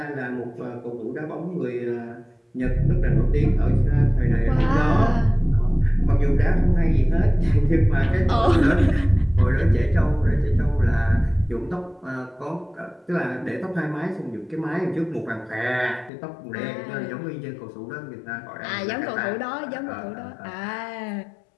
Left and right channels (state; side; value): drops out; right; at 16.1 s